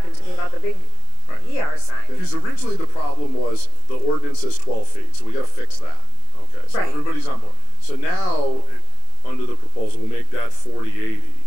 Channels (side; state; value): right; late; 27 ms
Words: to me about the big ER sign. Because originally the problem was the ordinance says 12 feet, so we got to fix that. Okay, so everybody's on board. So now, under the proposal, we'll make that 40/80.